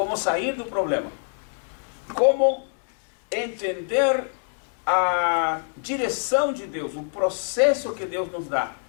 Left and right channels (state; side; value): silent; right; 62 dB below the other